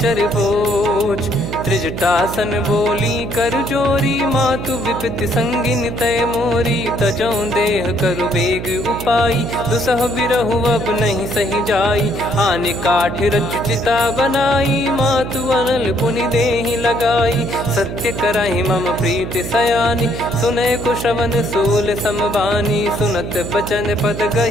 बोझ। त्रिजटासन बोली कर जोरी, मातु विपति संगिन तय मोरी। तजौ देह करु बेग उपाई, दुसह बिरहु अब नहीं सही जाई। आने काठ रचु चिता बनाई, मातु अनल पुनि देहि लगाई। सत्य करहि मम प्रीति सयानी, सुनय को श्रवण सूल समबानी। सुनत बचन पद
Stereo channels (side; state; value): right; noise; hum, 7 dB below the sound